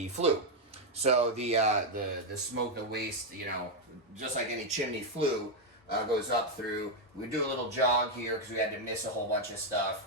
flue. So the smoke, the waste, you know, just like any chimney flue, goes up through. We do a little jog here because we had to miss a whole bunch of stuff.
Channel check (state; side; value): normal; both; correlation 0.01